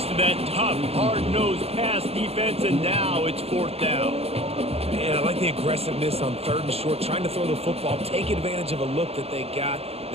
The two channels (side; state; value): left; late; 0.29 ms